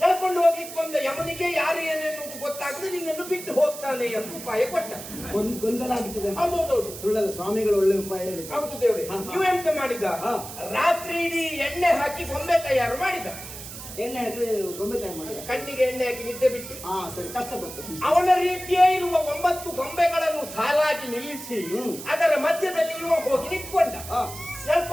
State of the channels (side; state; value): right; noise; hiss, 12 dB below the sound